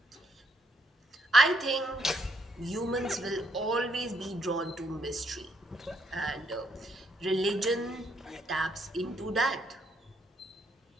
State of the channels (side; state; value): both; normal; correlation 0.74